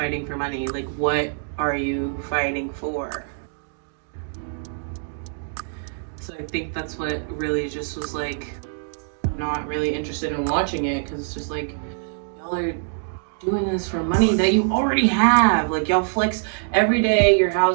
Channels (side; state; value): left; silent; digital silence